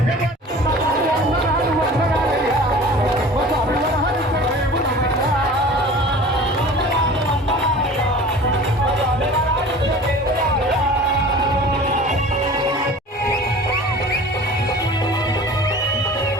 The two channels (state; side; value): normal; both; correlation 0.42